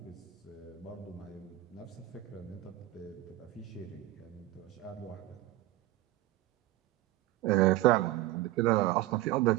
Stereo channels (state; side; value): quieter; left; 16.2 dB